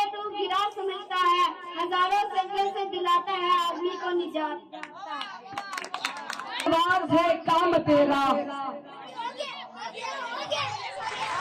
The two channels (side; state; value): both; identical; correlation 1.00